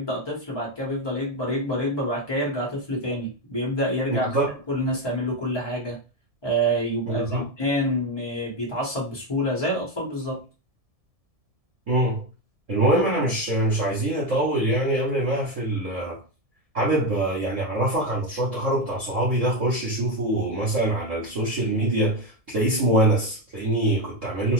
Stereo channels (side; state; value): left; late; 1.7 ms